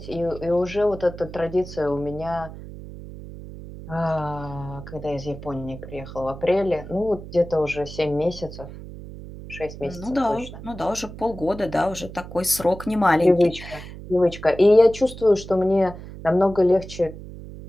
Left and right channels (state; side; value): noise; right; hum, 13 dB below the sound